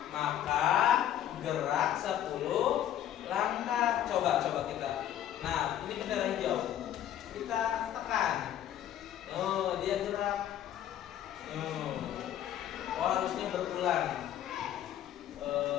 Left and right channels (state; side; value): quieter; right; 11.2 dB